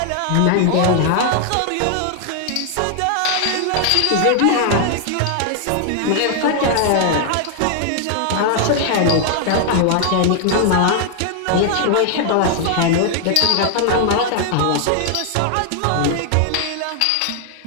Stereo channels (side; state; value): both; different; correlation 0.00